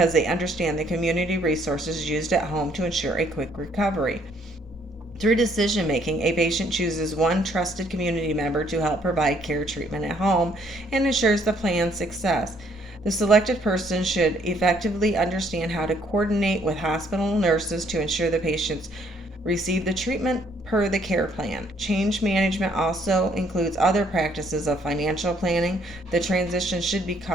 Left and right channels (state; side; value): normal; both; correlation 0.66